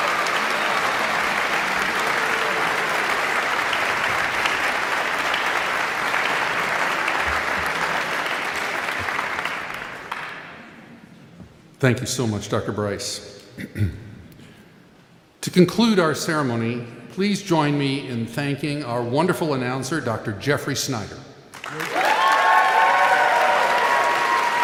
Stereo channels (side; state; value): both; identical; correlation 1.00